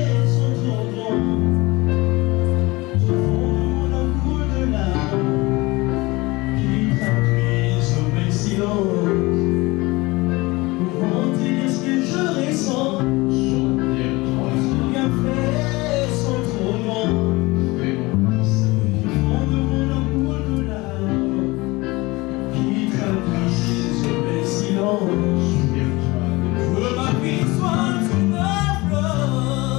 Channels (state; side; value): quieter; right; 22.5 dB